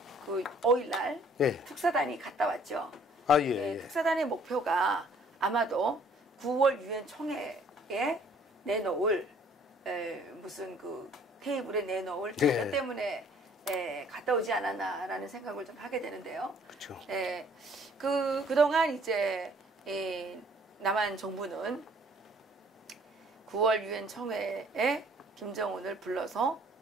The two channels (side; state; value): both; normal; correlation 0.58